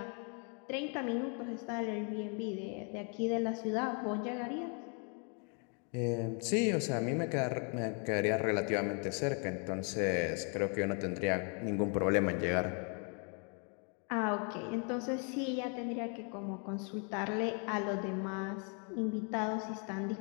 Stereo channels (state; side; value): quieter; right; 39.0 dB